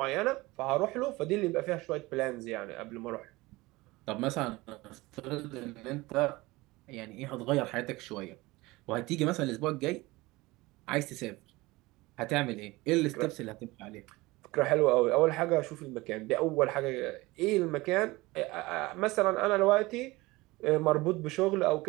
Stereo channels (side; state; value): left; quieter; 21.2 dB